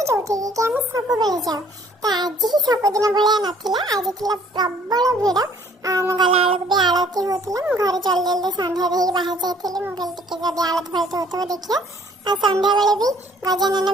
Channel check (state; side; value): normal; both; correlation 0.58